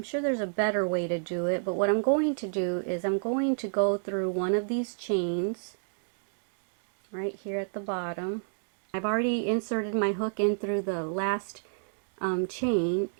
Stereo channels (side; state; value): left; silent; digital silence